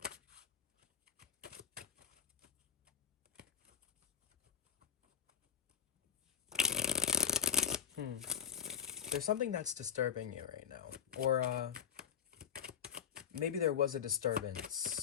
There's something that's disturbing you right now, or maybe there was a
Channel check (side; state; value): right; quieter; 8.2 dB